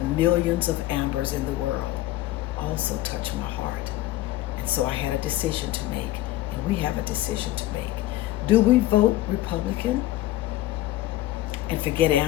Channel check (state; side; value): quieter; right; 15.6 dB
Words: millions of Ambers in the world also touched my heart. And so I had a decision to make, and we have a decision to make. Do we vote Republican and forget